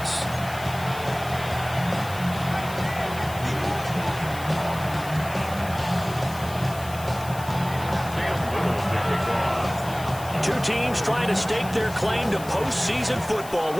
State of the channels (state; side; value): noise; left; hiss, 16 dB below the sound